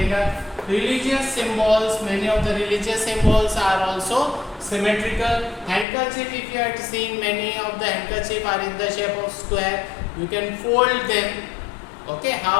Religious symbols, many of the religious symbols are also symmetrical. Handkerchief, if you had seen many of the handkerchief are in the shape of square. You can fold them, okay,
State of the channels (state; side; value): drops out; right; at 5.9 s